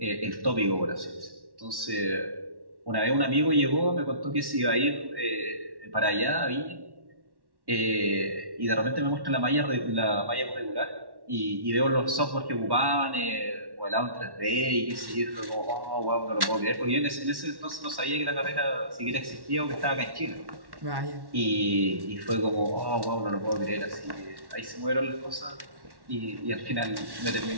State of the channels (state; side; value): late; left; 1.1 ms